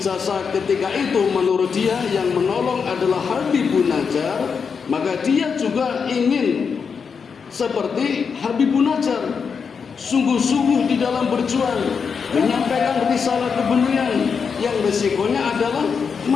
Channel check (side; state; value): right; quieter; 6.0 dB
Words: ketika itu menurut dia yang menolong adalah Habibun Najjar, maka dia juga ingin seperti Habibun Najjar, sungguh-sungguh di dalam berjuang menyampaikan risalah kebenaran yang resikonya adalah